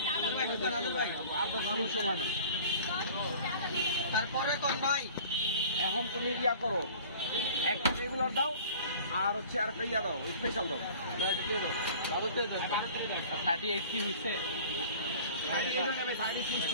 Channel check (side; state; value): both; inverted; correlation -0.45